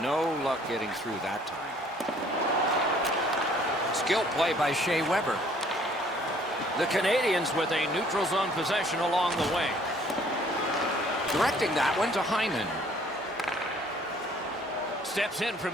luck getting through that time. Skill play by Shea Weber. The Canadians with a neutral zone possession along the way. Directing that one to Hyman. Steps in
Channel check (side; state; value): both; normal; correlation 0.58